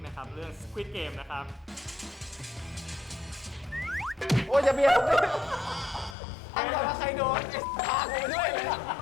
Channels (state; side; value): drops out; right; at 6.2 s